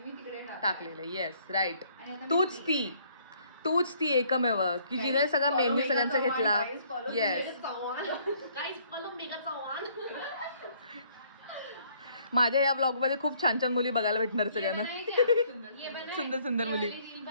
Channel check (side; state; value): both; inverted; correlation -0.63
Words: टाकलेलं आहे, येस, राईट. तूच ती एकमेव की जिने सगळा मेन्यू सगळ्यांचा घेतला. येस, माझ्या या ब्लॉग मध्ये खूप छान छान मुली बघायला भेटणार सगळ्यांना. सुंदर सुंदर मुली.